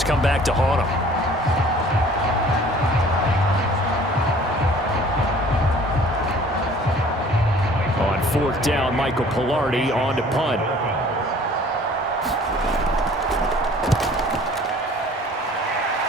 come back to haunt them. On fourth down, Michael Pilardi on to punt.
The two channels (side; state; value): both; normal; correlation 0.51